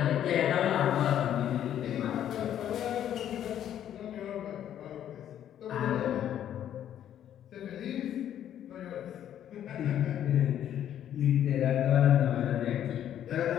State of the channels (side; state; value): right; quieter; 10.6 dB